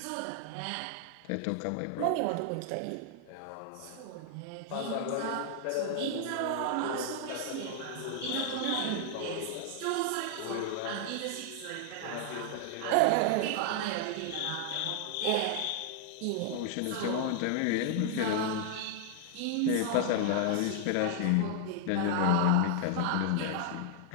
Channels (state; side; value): different; both; correlation 0.00